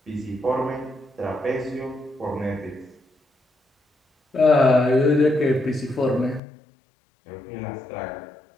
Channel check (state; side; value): drops out; right; at 6.4 s